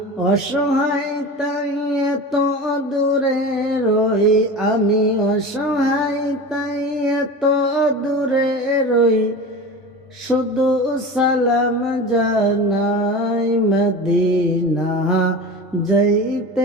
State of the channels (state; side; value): normal; both; correlation 0.31